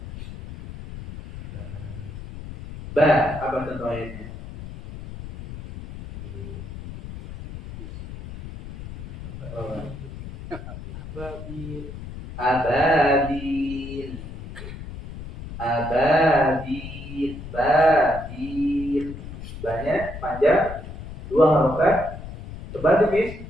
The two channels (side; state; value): left; noise; rumble, 11 dB below the sound